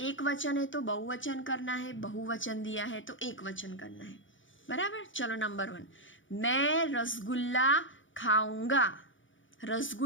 एक वचन है तो बहुवचन करना है, बहुवचन दिया है तो एक वचन करना है, बराबर। चलो नंबर 1, मैं रसगुल्ला खाऊंगा।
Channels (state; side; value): late; right; 0.56 ms